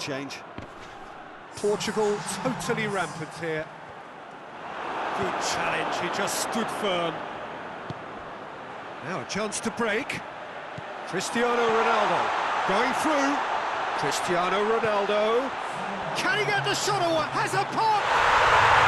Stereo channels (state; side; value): identical; both; correlation 1.00